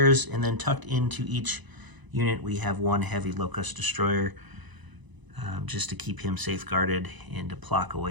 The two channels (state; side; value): late; left; 1.0 ms